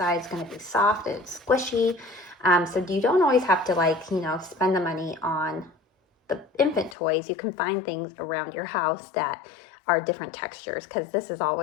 is going to be soft and squishy. So you don't always have to spend the money on the infant toys. You can find things around your house that are different textures, because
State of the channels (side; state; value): right; drops out; at 7.0 s